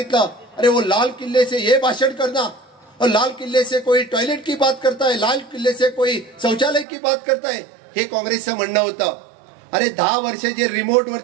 अरे वो लाल किले से ये भाषण करना और लाल किले से कोई टॉयलेट की बात करता है, लाल किले से कोई शौचालय की बात करता है, हे काँग्रेसचं म्हणणं होतं. अरे 10 वर्ष जे रिमोट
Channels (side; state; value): left; drops out; at 6.9 s